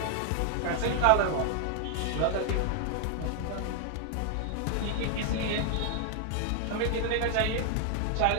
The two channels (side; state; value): both; different; correlation 0.00